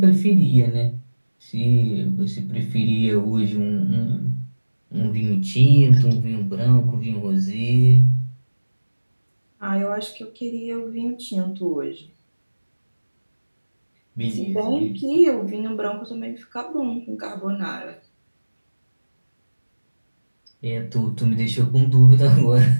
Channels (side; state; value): both; inverted; correlation -1.00